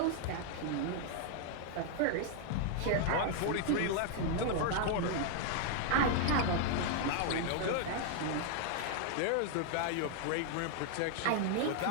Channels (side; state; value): both; different; correlation 0.00